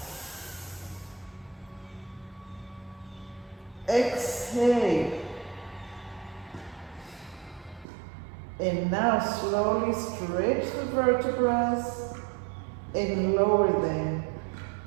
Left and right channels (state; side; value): drops out; left; at 7.9 s